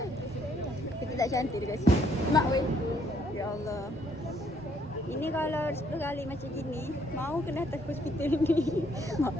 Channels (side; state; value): both; normal; correlation 0.67